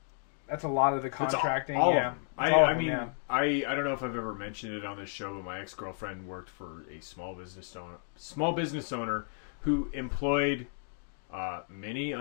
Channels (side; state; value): right; silent; digital silence